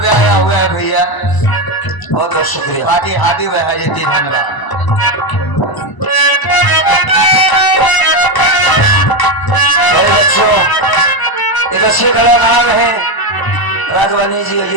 आया हुआ है भैया, बहुत बहुत शुक्रिया। बाकी हाथी वह है जी, धन्यवाद। बच्चों एक अच्छे कलाकार हैं राघवानी जी। ये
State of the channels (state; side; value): late; right; 1.0 ms